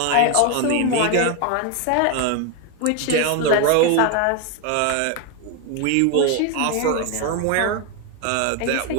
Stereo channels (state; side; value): different; both; correlation 0.01